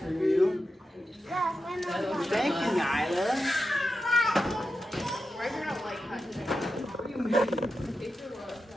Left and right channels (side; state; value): both; normal; correlation 0.90